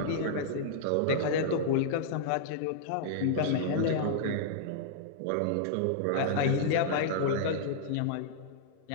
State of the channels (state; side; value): different; both; correlation -0.01